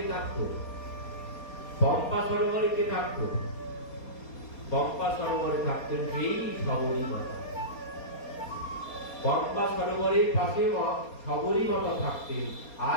থাকতো? পম্পা সরোবরে কে থাকতো? পম্পা সরোবরে থাকতেন সেই শবরী মাতা। পম্পা সরোবরের পাশে শবরী মাতা থাকতেন।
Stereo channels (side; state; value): right; late; 4.3 ms